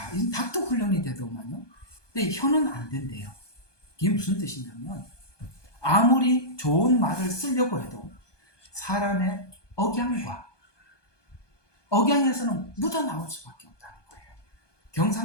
이 닭도 훈련이 되더만요. 근데 혀는 안 된대요. 이게 무슨 뜻이냐면 아무리 좋은 말을 쓰려고 해도 사람의 억양에서는 묻어나올 수밖에 없다는 거예요.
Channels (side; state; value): right; late; 1.2 ms